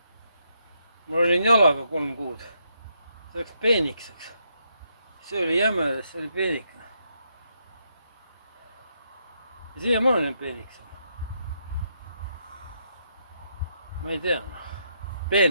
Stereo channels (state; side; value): inverted; both; correlation -0.78